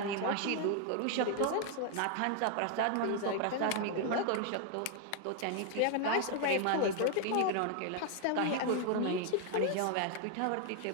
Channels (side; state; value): both; different; correlation 0.00